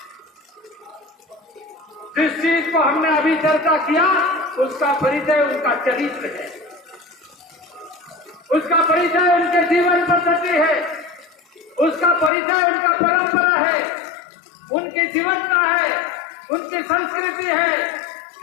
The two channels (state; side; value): drops out; right; at 12.3 s